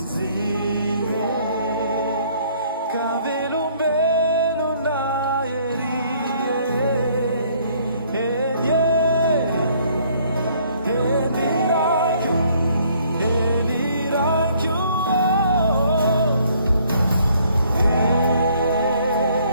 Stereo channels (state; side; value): inverted; both; correlation -0.62